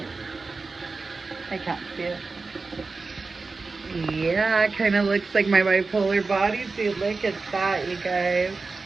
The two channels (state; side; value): quieter; left; 4.0 dB